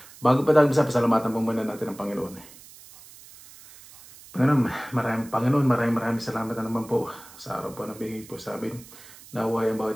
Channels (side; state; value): right; noise; hiss, 20 dB below the sound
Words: Bago pa tayo pasalamatan po muna natin ang Panginoon. Panginoon, maraming salamat na naman po sa araw po na bigay po sa amin. Naway ang